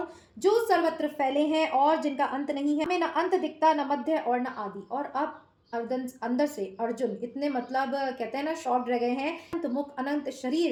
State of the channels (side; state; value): both; identical; correlation 1.00